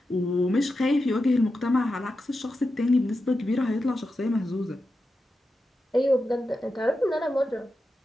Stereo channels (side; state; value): both; normal; correlation 0.90